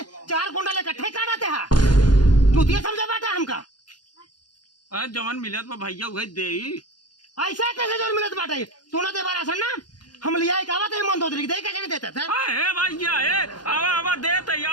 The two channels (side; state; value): right; late; 0.70 ms